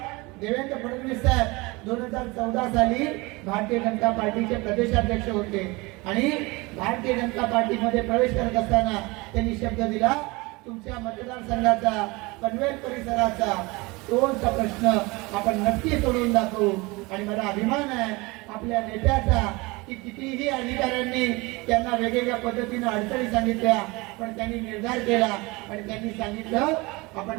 देवेंद्र फडणवीस साहेब 2014 साली भारतीय जनता पार्टीचे प्रदेशाध्यक्ष होते आणि भारतीय जनता पार्टीमध्ये प्रवेश करत असताना त्यांनी शब्द दिला, तुमच्या मतदारसंघाचा पनवेल परिसराचा टोलचा प्रश्न आपण नक्की सोडवून दाखवू। आणि मला अभिमान आहे आपल्या नेत्याचा की कितीही अधिकाऱ्यांनी त्यांना वेगवेगळ्या पद्धतीने अडचणी सांगितल्या, पण त्यांनी निर्धार केला आणि त्यांनी सांगितलं आपण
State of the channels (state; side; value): quieter; left; 24.3 dB